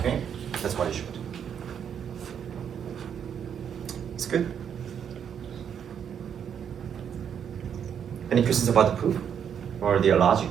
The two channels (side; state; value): left; quieter; 8.2 dB